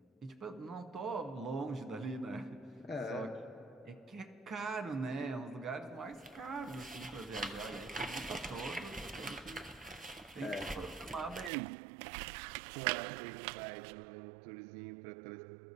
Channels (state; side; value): drops out; left; at 11.5 s